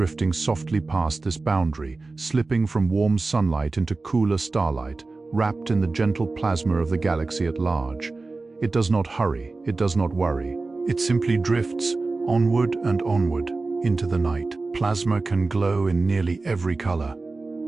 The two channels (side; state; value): left; quieter; 3.6 dB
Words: softly past this boundary, slipping from warm sunlight into cooler starlight, wrapped in the gentle plasma of the galaxy at large. It does not hurry, it does not worry. It simply drifts onward and onward into the night. Plasma can glow in nearly every color,